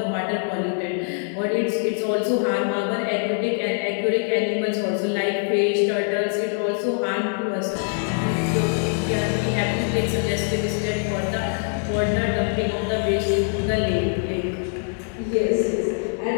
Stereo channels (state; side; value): silent; right; 57 dB below the other